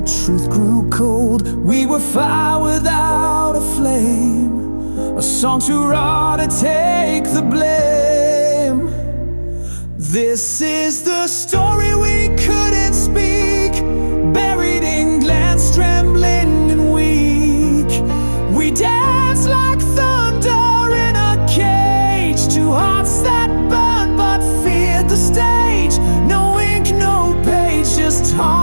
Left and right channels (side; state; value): both; inverted; correlation -1.00